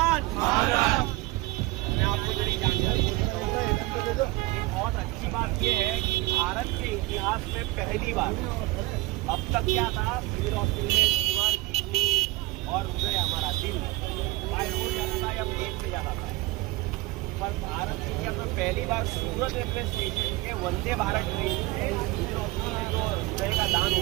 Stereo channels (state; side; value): quieter; left; 20.6 dB